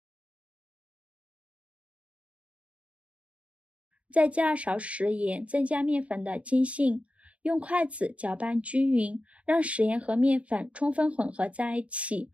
再加2勺食盐，增加面粉的筋性，用筷子搅拌均匀，让食盐和面粉充分混合在一起。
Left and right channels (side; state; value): left; late; 0.064 ms